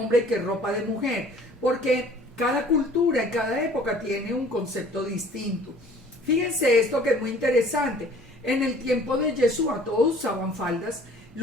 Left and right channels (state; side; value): normal; both; correlation 0.52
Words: y qué es ropa de mujer, porque cada cultura y cada época tiene un concepto distinto. Fíjense esto que es muy interesante. En el tiempo de Yeshua todos usaban faldas,